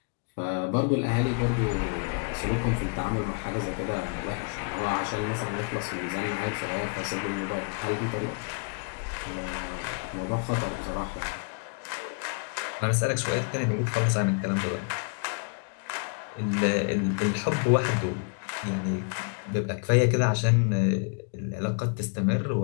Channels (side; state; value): right; quieter; 36.9 dB